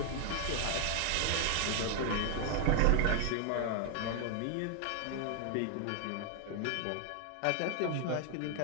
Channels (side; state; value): both; different; correlation 0.00